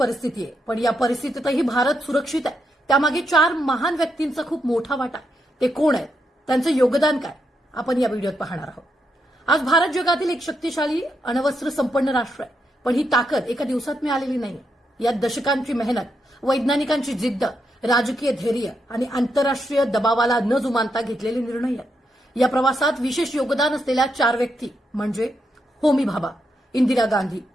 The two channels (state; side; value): normal; both; correlation 0.82